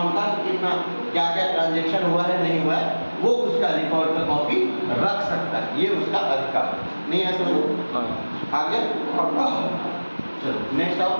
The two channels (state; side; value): inverted; both; correlation -1.00